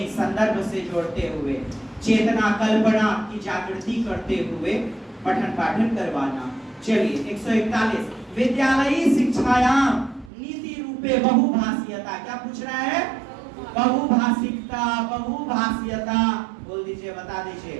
संदर्भ से जोड़ते हुए, चेतना कल्पना की जागृति करते हुए पठन पाठन करवाना। चलिए 141 विद्यालयी शिक्षायाम नीति रूपे बहुभाषीयता। क्या पूछ रहा है? बहुभाषिकता, बहुभाषीयता। बोल दीजिए, बता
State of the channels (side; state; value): left; drops out; at 10.3 s